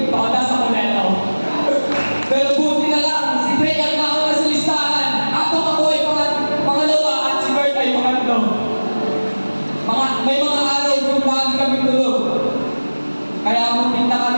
pakadas ako neto. Pero buti na lang, si Dre ang nauna sa listahan. Ako ay pangalawa at si Bert ay pangatlo. May mga araw kung lagi kami tulog. Kaya pumunta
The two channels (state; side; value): inverted; both; correlation -1.00